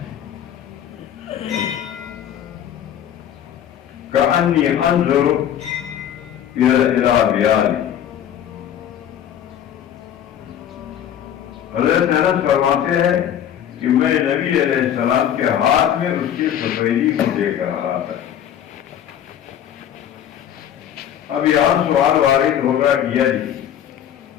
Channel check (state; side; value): quieter; right; 10.0 dB